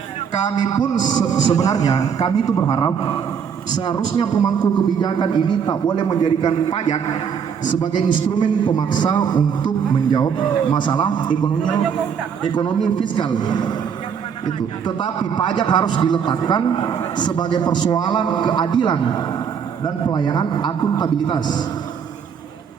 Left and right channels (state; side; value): quieter; left; 7.2 dB